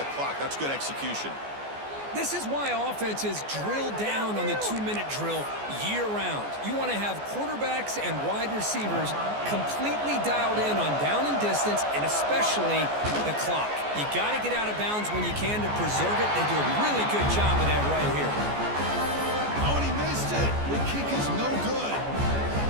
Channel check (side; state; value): left; late; 14 ms